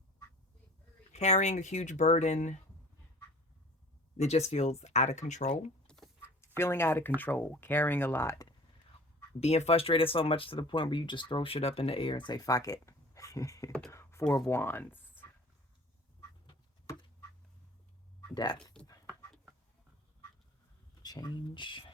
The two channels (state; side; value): normal; both; correlation 0.45